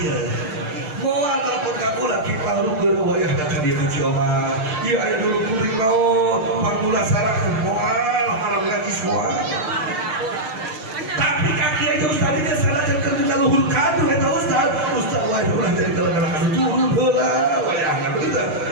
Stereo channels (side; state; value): left; late; 6.6 ms